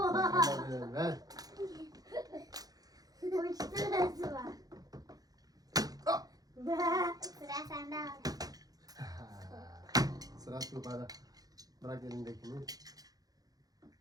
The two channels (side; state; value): left; late; 0.18 ms